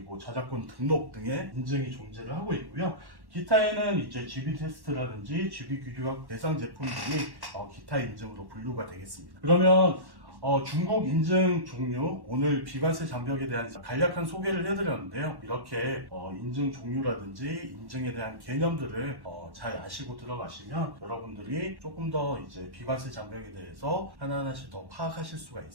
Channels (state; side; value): late; left; 1.1 ms